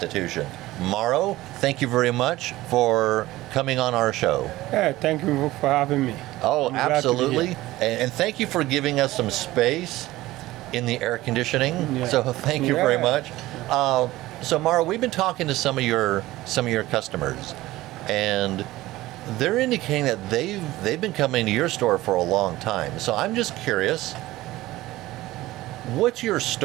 Mauro, thank you very much for coming on our show. Yeah, thank you for having me. Oh, absolutely. And thank you for giving us some space in the air conditioning. Yeah. So thank you very much. So Mauro, we've been talking to some of your customers, and they're indicating that they've been coming to your store for a long time. So I'm just curious, what's your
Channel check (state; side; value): quieter; left; 17.3 dB